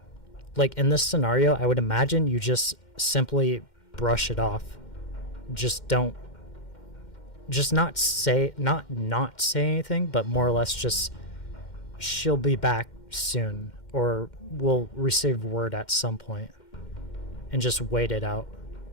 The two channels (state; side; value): late; right; 2.1 ms